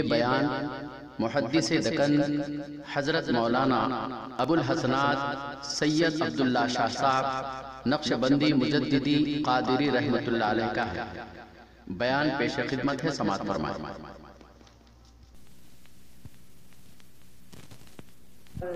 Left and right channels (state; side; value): identical; both; correlation 1.00